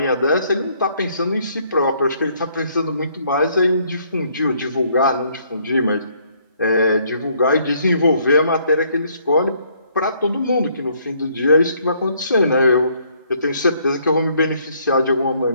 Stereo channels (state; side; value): inverted; both; correlation -0.67